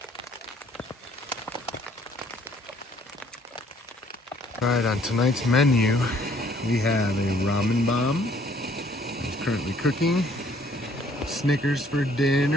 All right, on tonight's menu, we have a ramen bomb. It's currently cooking. Snickers for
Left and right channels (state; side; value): normal; both; correlation 0.62